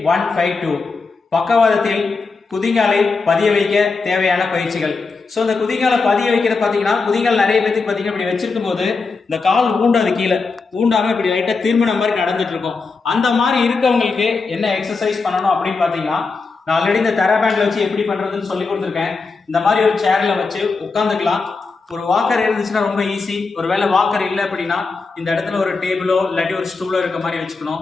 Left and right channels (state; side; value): quieter; right; 4.3 dB